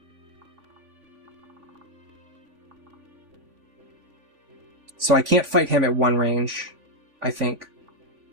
So I can't fight him at one range, I think.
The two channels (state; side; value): late; left; 3.5 ms